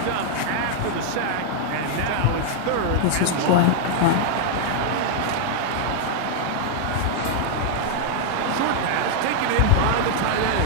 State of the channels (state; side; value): different; both; correlation -0.01